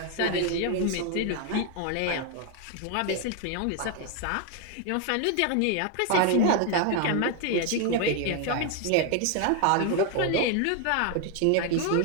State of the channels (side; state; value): both; different; correlation 0.01